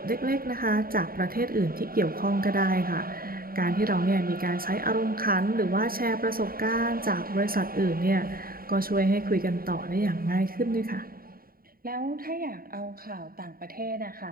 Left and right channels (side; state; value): left; late; 0.43 ms